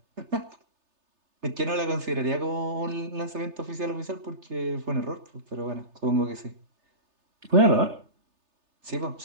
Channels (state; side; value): late; left; 3.3 ms